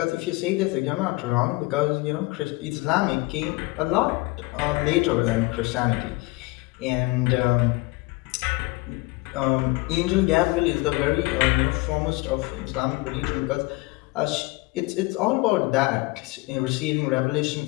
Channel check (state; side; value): quieter; right; 23.2 dB